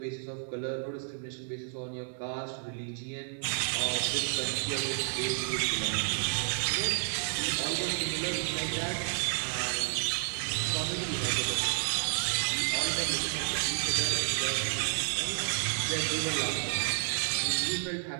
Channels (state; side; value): silent; left; digital silence